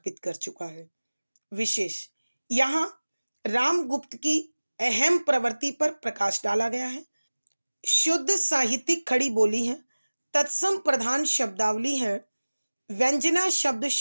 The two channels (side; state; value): both; inverted; correlation -1.00